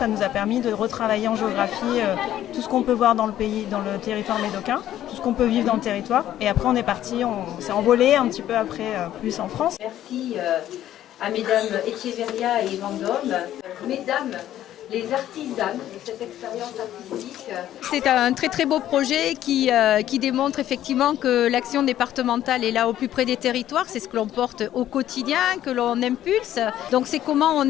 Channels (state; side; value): quieter; right; 12.3 dB